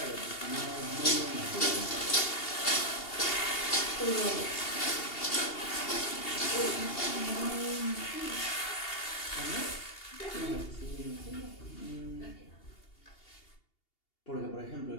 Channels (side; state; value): right; late; 2.8 ms